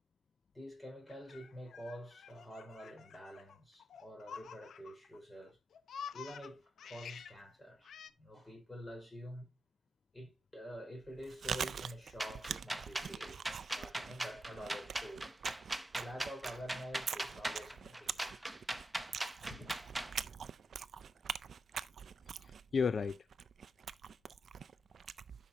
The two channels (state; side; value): normal; both; correlation 0.86